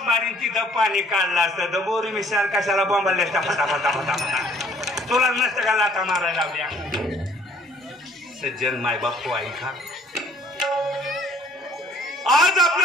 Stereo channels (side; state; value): both; normal; correlation 0.59